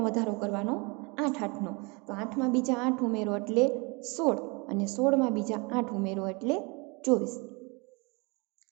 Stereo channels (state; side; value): quieter; left; 29.3 dB